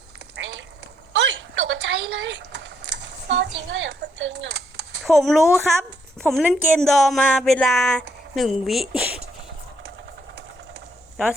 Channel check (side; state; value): both; normal; correlation 0.72